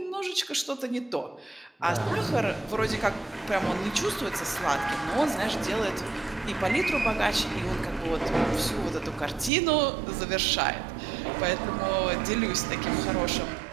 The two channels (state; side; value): drops out; left; at 9.5 s